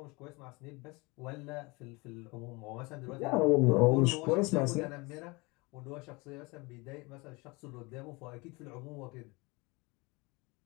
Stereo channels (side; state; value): right; quieter; 25.9 dB